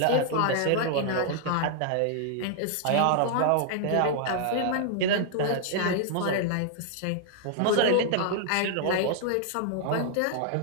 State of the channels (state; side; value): different; both; correlation -0.01